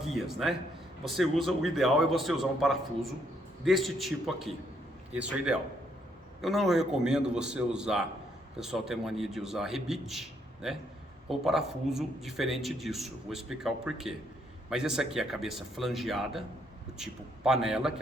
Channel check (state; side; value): normal; both; correlation 0.72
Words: né? O ideal é você usar um parafuso deste tipo aqui. Esse é o ideal. Eu não recomendo você usar, o pessoal tem mania de usar rebite, né? Ou parafuso diferente disso. Vou explicar o porquê. Mas esse aqui é a cabeça flangeada, do tipo panela, que